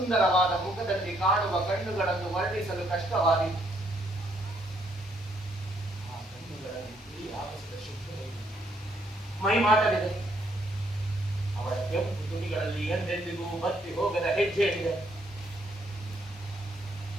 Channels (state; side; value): normal; both; correlation 0.70